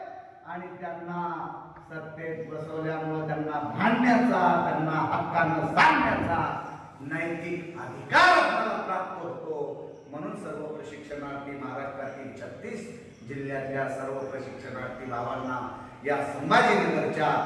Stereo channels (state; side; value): identical; both; correlation 1.00